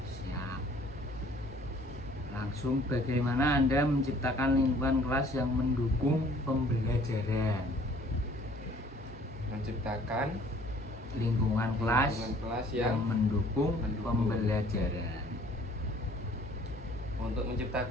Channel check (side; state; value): both; normal; correlation 0.56